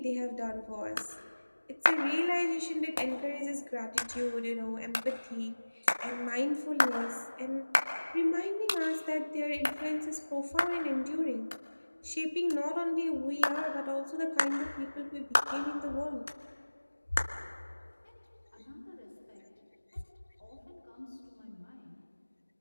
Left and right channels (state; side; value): inverted; both; correlation -1.00